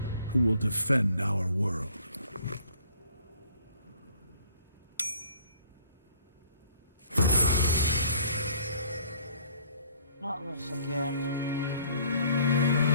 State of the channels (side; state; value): both; inverted; correlation -0.57